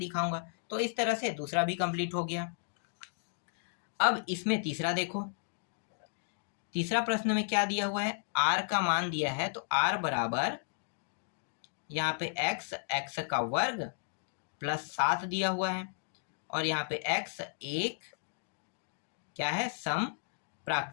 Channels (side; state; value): right; silent; digital silence